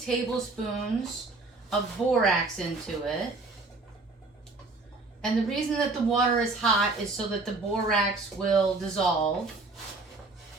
of borax into it. And the reason that the water is hot is so that the borax will dissolve.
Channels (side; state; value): left; quieter; 3.5 dB